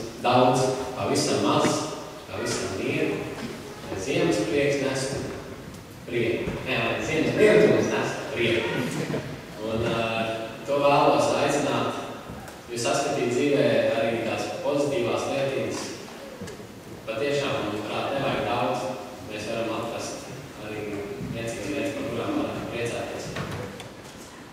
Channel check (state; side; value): identical; both; correlation 1.00